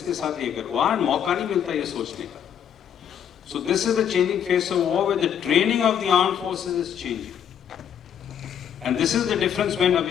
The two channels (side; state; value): right; quieter; 8.8 dB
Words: साथ ये कर. वहां मौका नहीं मिलता ये सोचने का. So this is the changing face of war, where the training of the armed forces is changing. And this is the difference when